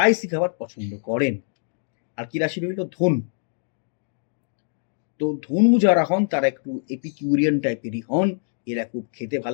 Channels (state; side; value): silent; right; digital silence